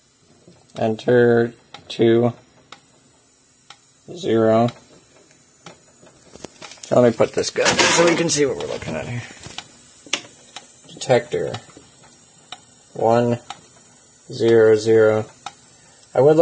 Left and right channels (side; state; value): both; identical; correlation 1.00